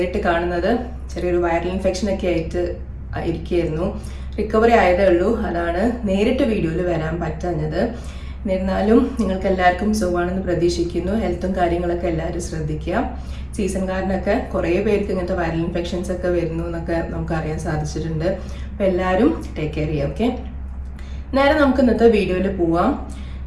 കാണുന്നത്. ചെറിയൊരു വൈറൽ ഇൻഫെക്ഷൻ ഒക്കെ ആയിട്ട് ഇരിക്കുകയായിരുന്നു. റിക്കവറി ആയതേ ഉള്ളൂ. അതാണ് നേരിട്ട് വീഡിയോയിൽ വരാൻ പറ്റാഞ്ഞത്. എന്നിരുന്നാലും നിങ്ങൾക്ക് എല്ലാവർക്കും സുഖമാണെന്ന് പ്രതീക്ഷിക്കുന്നു. ഹെൽത്തും കാര്യങ്ങളൊക്കെ എല്ലാവരും ശ്രദ്ധിക്കുക. സീസൺ കാരനൊക്കെ കുറേ പേർക്ക് ഇങ്ങനത്തെ വൈറൽ ഇൻഫെക്ഷൻസ് ഒക്കെ വരുന്നു എന്നൊക്കെ നമുക്ക് അറിയാൻ സാധിച്ചിട്ടുണ്ട്. അപ്പോൾ എല്ലാവരും ടേക്ക് കെയർ ചെയ്യുക. ഓക്കെ, നേരെ നമുക്ക് ഇന്നത്തെ വീഡിയോയിൽ പോവാം.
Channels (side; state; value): both; identical; correlation 1.00